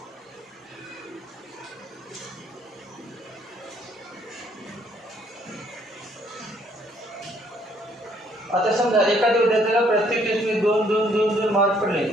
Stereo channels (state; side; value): normal; both; correlation 0.66